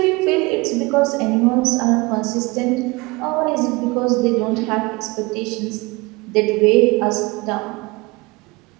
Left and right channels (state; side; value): quieter; left; 24.5 dB